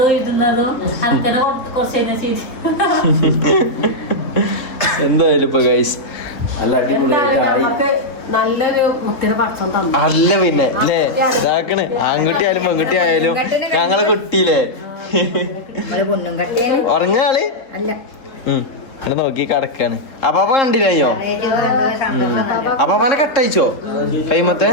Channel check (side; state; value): right; late; 3.7 ms